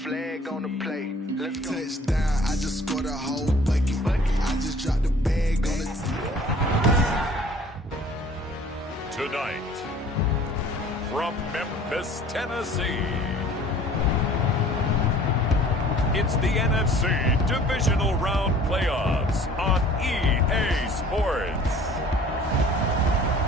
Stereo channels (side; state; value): both; normal; correlation 0.50